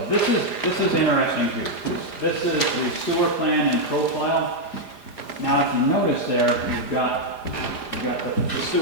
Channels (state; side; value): late; left; 4.9 ms